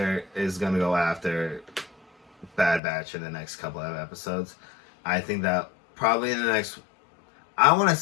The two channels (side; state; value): right; drops out; at 2.8 s